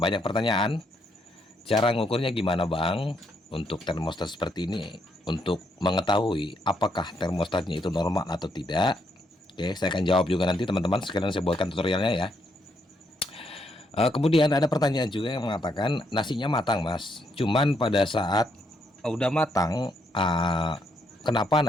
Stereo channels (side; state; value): both; normal; correlation 0.75